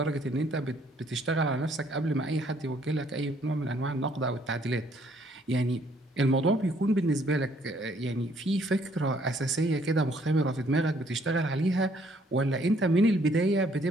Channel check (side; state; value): both; normal; correlation 0.65